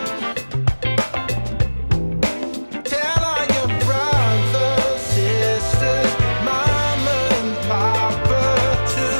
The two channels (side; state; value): both; inverted; correlation -1.00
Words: Tell all your brothers, sisters, mama and papa